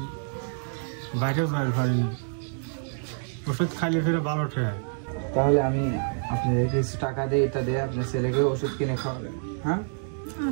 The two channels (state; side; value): silent; left; digital silence